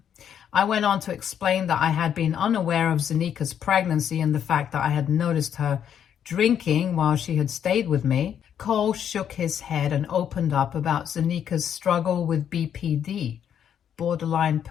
I went on to explain that I had been unaware of Zanika's pregnancy and the fact that I had noticed her drinking while she had stayed with me. Cole shook his head and opened up about Zanika's struggle with BPD, borderline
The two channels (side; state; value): right; quieter; 9.0 dB